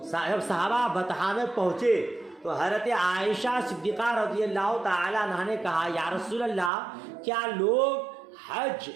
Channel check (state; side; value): drops out; left; at 6.7 s